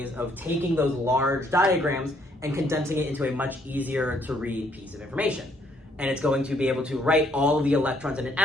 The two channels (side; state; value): both; normal; correlation 0.68